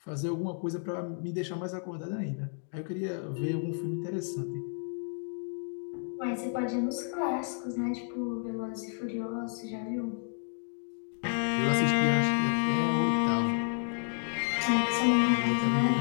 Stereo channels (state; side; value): silent; right; 57 dB below the other